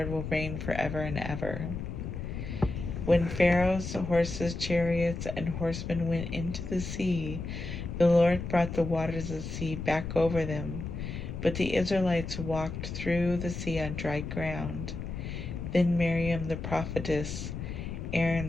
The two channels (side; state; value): left; noise; rumble, 6 dB below the sound